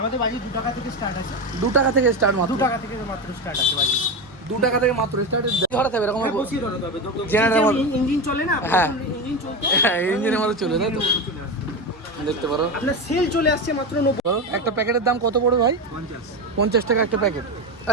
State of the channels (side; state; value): both; normal; correlation 0.18